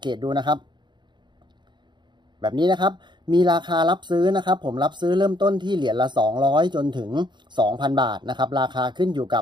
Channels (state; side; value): late; left; 0.22 ms